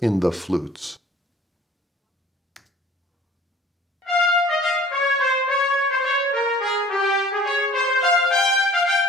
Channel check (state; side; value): normal; both; correlation 0.50